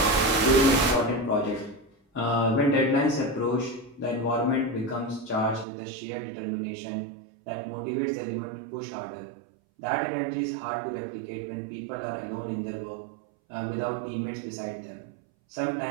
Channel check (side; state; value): left; drops out; at 5.7 s